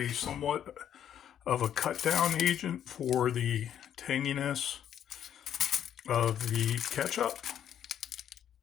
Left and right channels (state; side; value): quieter; right; 9.8 dB